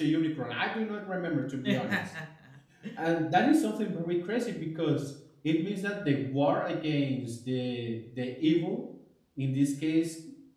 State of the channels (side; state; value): both; identical; correlation 1.00